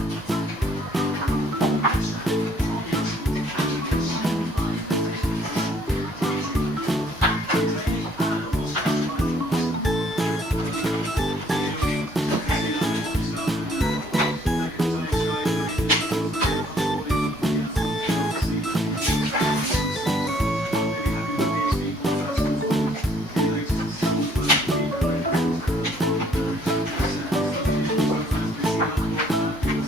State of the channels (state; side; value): normal; both; correlation 0.63